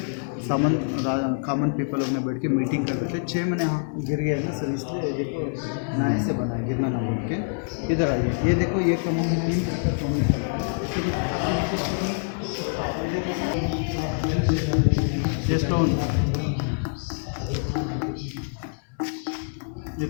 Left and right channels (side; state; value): right; silent; digital silence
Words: कॉमन पीपल लोग में बैठ के मीटिंग करते थे। 6 महीने हाँ गिर गया ना सर, इसलिए देखो नए से बना है, गिरना ना बोल के। इधर आइए, ये देखो ये कमों में 3 ये स्टोन, ये